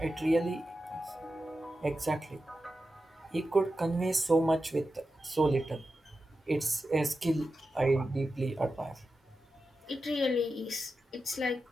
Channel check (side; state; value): both; normal; correlation 0.91